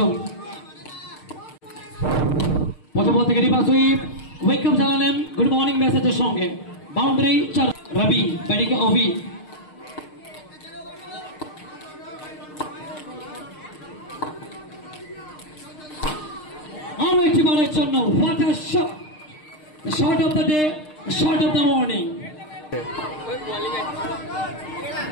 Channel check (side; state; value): right; late; 6.6 ms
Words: প্রথম বল থেকে রিভার্স সুইপ, ওয়েলকাম জানালেন গুড মর্নিং মেসেজের সঙ্গে। বাউন্ডারি 4 রাবি, ব্যাটিংয়ে অভি। আরো একটি বলের জন্য what a shot, the shot of the day, the shot of the morning.